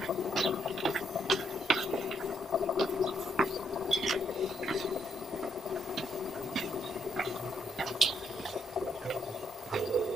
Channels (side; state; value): both; normal; correlation 0.75